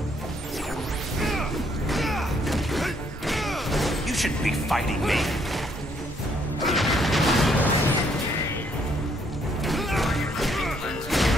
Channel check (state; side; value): normal; both; correlation 0.69